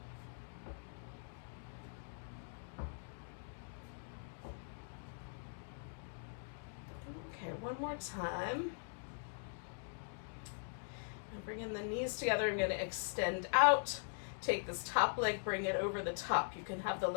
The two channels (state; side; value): silent; right; digital silence